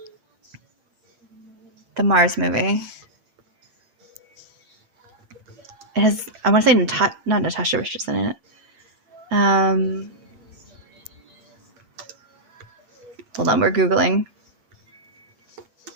Mars movie? It has, I want to say not Natasha Richardson in it. Hold on, we're Googling.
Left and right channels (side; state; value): left; late; 8.8 ms